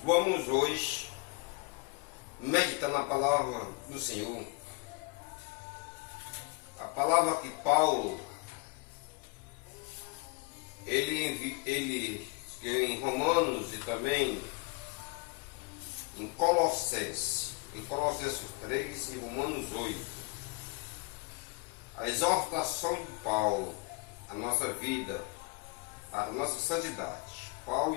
vamos hoje meditar na palavra do Senhor. A palavra que Paulo, ele em Romanos e também em Colossenses 3 e Romanos 8. A exortação de Paulo, a nossa vida, a nossa santidade.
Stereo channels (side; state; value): right; quieter; 27.9 dB